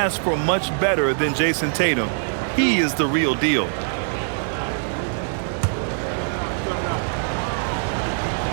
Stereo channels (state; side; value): silent; left; 64 dB below the other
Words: for much better than Jason Tatum. He is the real deal.